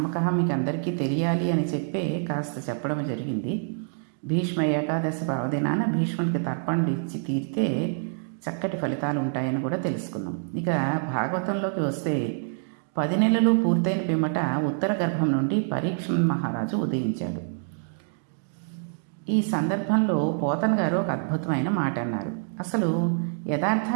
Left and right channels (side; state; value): left; silent; digital silence